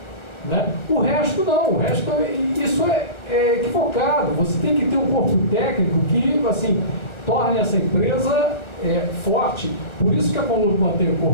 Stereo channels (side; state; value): right; late; 1.3 ms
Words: Né? O resto não, o resto isso é equivocado. Você tem que ter um corpo técnico que, assim, torne essa empresa forte. Por isso que a Conlurb mantém o